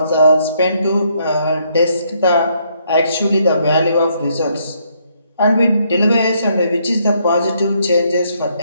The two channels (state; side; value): inverted; both; correlation -0.72